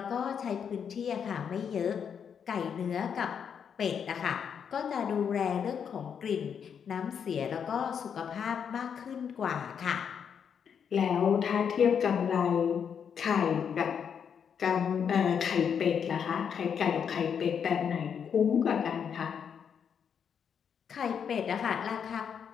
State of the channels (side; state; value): right; quieter; 7.4 dB